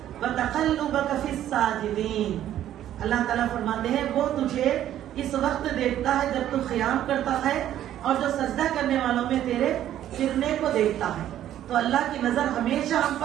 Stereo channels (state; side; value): quieter; left; 11.8 dB